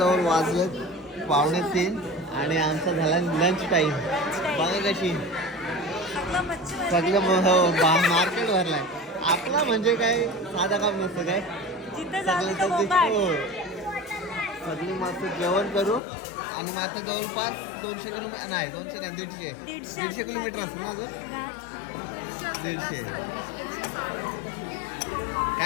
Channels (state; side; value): drops out; right; at 16.0 s